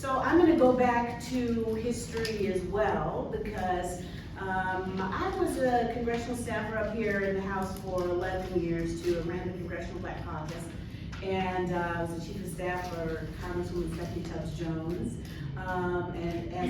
I'm gonna go back to history as well, because I was a congressional staffer up here in the House for 11 years too. I ran the Congressional Black Caucus, and I was the chief of staff for Congresswoman Stephanie Tubbs Jones. And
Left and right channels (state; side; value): identical; both; correlation 1.00